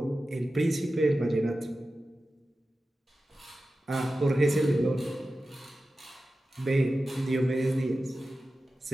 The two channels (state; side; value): normal; both; correlation 0.94